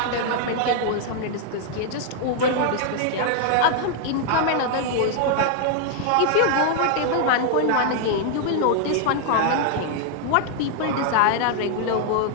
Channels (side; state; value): both; different; correlation 0.00